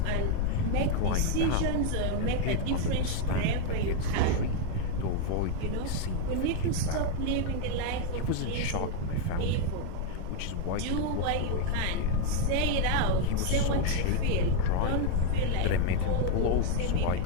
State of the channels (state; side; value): different; both; correlation 0.01